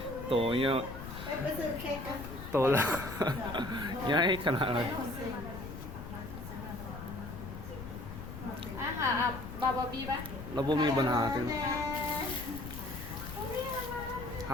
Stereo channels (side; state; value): left; noise; rumble, 10 dB below the sound